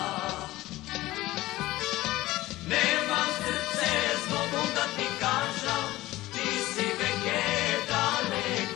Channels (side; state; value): right; quieter; 17.5 dB